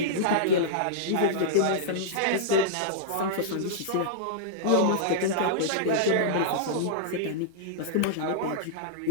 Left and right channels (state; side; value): different; both; correlation -0.02